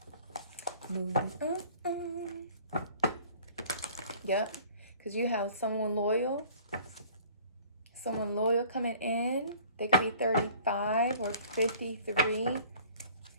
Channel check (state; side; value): inverted; both; correlation -0.50